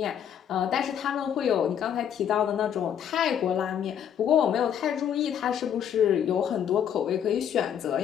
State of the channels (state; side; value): quieter; right; 9.0 dB